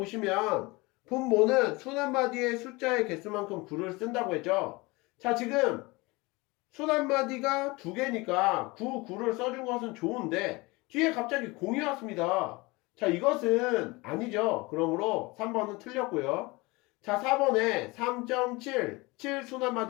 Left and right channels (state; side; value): quieter; right; 23.9 dB